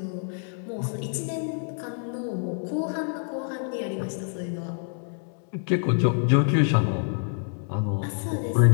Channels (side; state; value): right; silent; 57 dB below the other